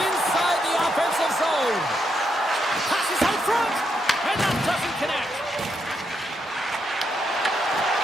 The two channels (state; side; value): normal; both; correlation 0.80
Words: the offensive zone. Passes out front, and that doesn't connect.